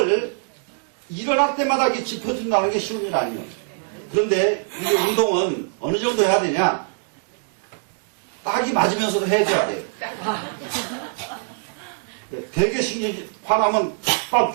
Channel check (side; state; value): left; silent; digital silence